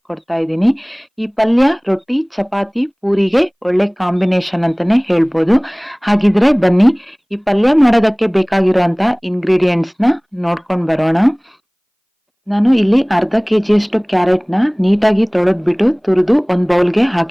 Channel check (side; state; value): both; identical; correlation 1.00